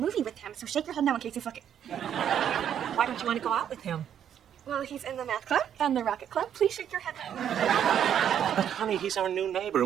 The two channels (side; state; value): left; quieter; 9.4 dB